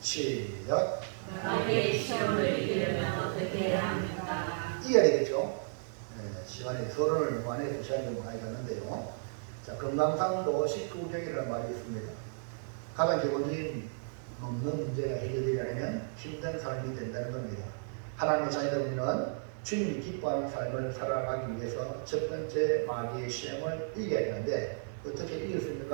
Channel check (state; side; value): silent; left; digital silence